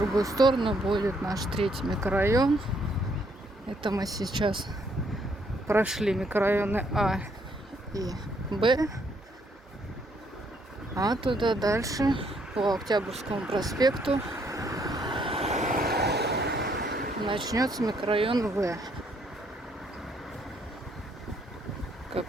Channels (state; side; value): normal; both; correlation 0.70